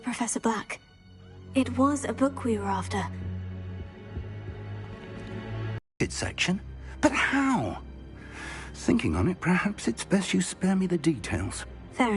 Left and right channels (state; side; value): identical; both; correlation 1.00